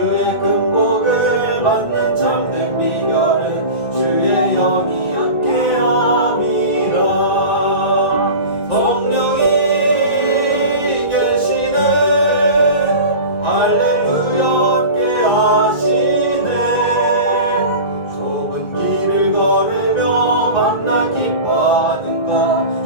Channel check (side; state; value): right; late; 1.9 ms